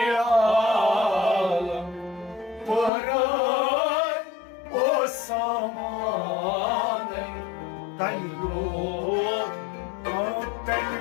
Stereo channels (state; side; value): drops out; right; at 2.9 s